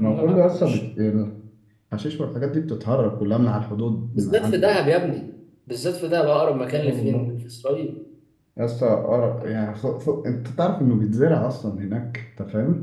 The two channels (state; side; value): identical; both; correlation 1.00